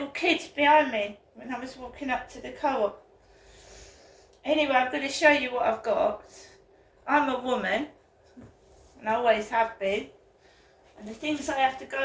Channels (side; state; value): both; identical; correlation 1.00